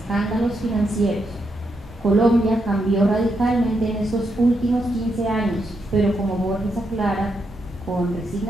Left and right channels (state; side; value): normal; both; correlation 0.81